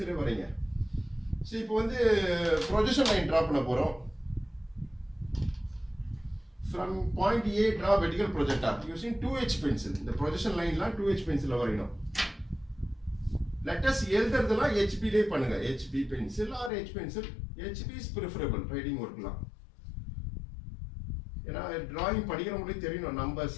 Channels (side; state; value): right; drops out; at 16.7 s